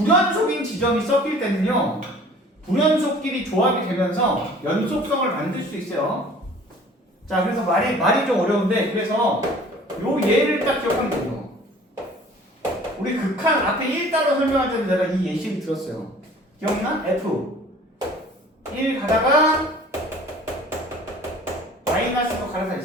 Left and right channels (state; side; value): normal; both; correlation 0.49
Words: 지점이 섞일 때는요. 불연속끼리 조합이 되면서 연속성을 만들 수 있어요. 자, 그래서 말이 좀 어려운데 그래서 요 예를 딱 기억하면 돼요. 우리 극한 앞에 1 따로 설명할 때는 내가 이 예시를 들었어요. 기억나? F 1 가다가 마이너스로 갈아타 이